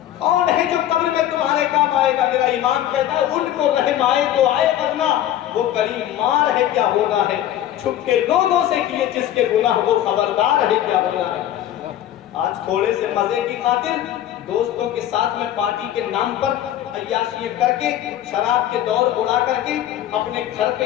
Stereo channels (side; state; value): right; quieter; 12.0 dB